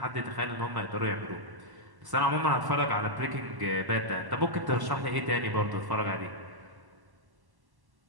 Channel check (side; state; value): left; late; 1.1 ms